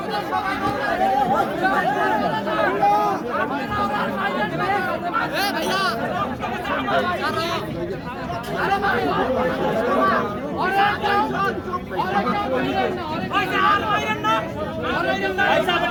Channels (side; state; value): both; identical; correlation 1.00